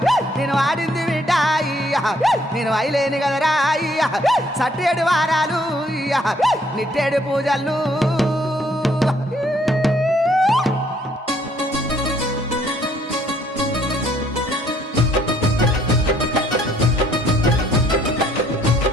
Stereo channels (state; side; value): normal; both; correlation 0.65